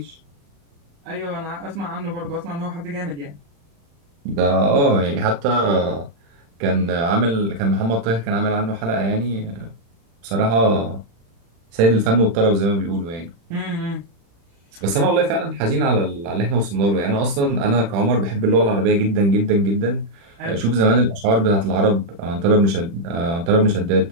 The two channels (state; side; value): late; left; 35 ms